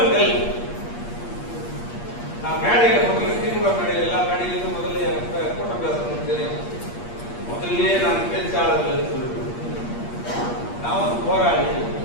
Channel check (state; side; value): late; right; 8.5 ms